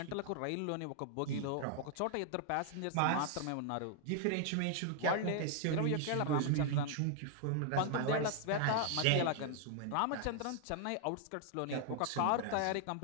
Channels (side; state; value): both; different; correlation 0.00